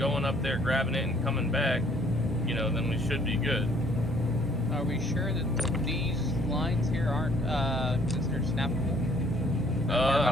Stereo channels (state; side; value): normal; both; correlation 0.60